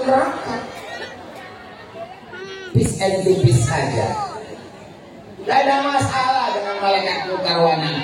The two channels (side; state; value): both; identical; correlation 1.00